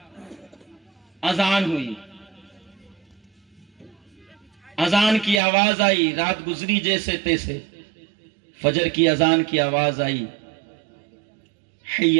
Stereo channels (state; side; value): drops out; left; at 5.4 s